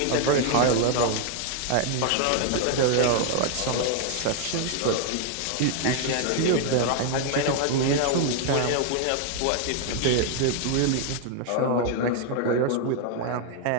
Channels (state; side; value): different; both; correlation 0.00